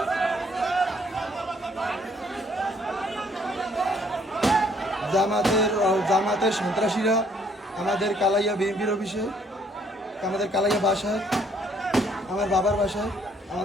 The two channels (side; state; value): both; normal; correlation 0.64